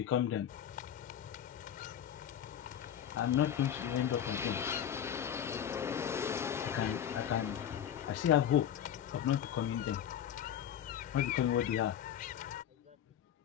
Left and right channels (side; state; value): right; quieter; 9.7 dB